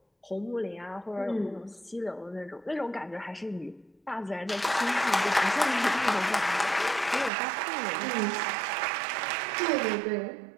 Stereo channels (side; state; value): left; drops out; at 7.3 s